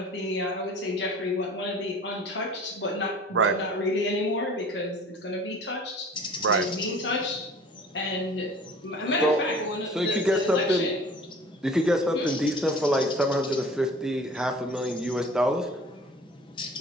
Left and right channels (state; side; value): normal; both; correlation 0.45